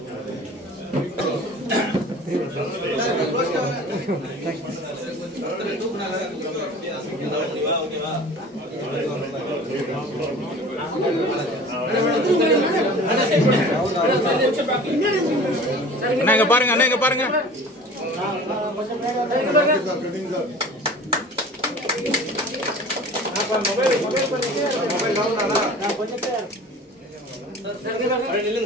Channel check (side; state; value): both; normal; correlation 0.42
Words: அண்ணா பாருங்க, அண்ணா பாருங்க.